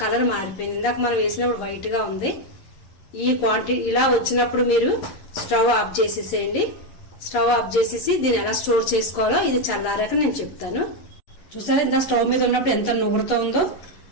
కలర్ మారిపోయింది. ఇందాక మనం వేసినప్పుడు వైట్ గా ఉంది. ఈ క్వాంటిటీ ఇలా వచ్చినప్పుడు మీరు స్టవ్ ఆఫ్ చేసేసేయండి. స్టవ్ ఆఫ్ చేసేసి దీన్ని ఎలా స్టోర్ చేసుకోవాలో ఇది చల్లారాక నేను చెప్తాను. చూసారా ఇంత స్టవ్ మీద ఉన్నప్పుడు ఎంత నుగురుతో ఉందో.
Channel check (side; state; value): right; late; 11 ms